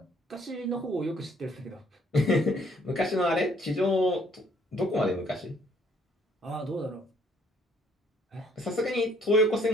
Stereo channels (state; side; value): normal; both; correlation 0.64